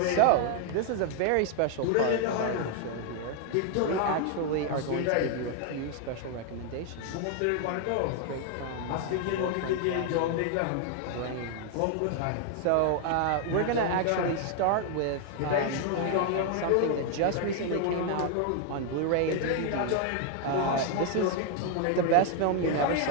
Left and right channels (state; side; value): different; both; correlation 0.00